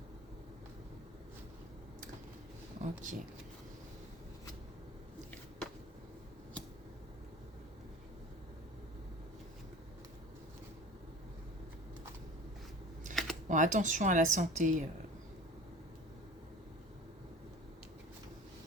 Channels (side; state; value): both; normal; correlation 0.40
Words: Ok. Bon, attention à la santé.